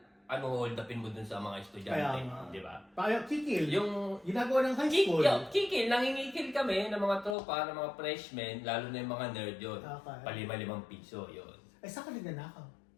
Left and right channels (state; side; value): drops out; right; at 7.4 s